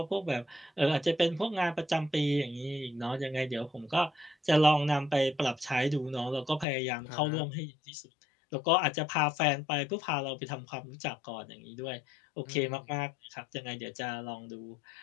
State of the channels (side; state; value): right; drops out; at 6.7 s